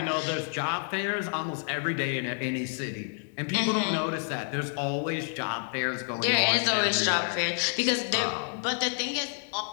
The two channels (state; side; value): silent; right; 56 dB below the other